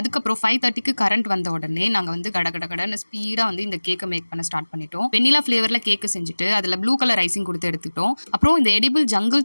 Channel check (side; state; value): both; inverted; correlation -1.00